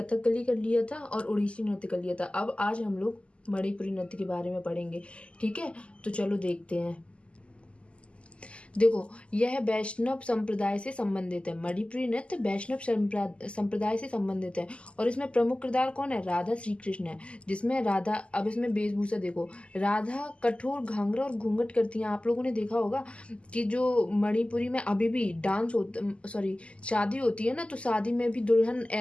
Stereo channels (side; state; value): right; late; 0.055 ms